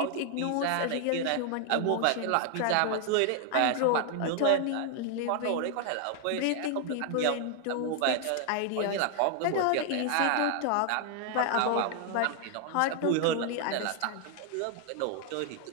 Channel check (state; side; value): different; both; correlation 0.00